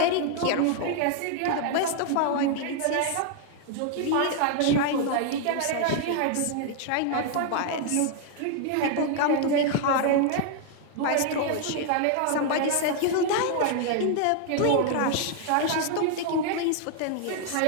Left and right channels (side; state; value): both; different; correlation 0.00